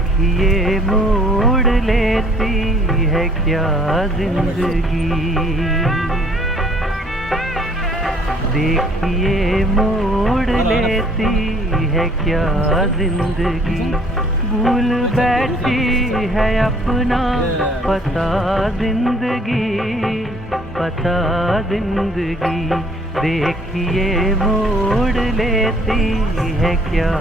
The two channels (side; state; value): both; normal; correlation 0.59